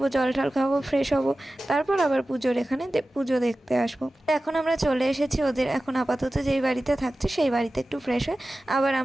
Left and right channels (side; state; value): both; normal; correlation 0.95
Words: জল টল খাবো, ফ্রেশ হবো, তারপর আবার পুজোর এখানে পুজো দেখতে আসবো। এখন আমরা চলে এসেছি ওদের, এখন আপাতত যেই বাড়িতে থাকছে সেই বাড়িতে একটু ফ্রেশ হয়ে আবার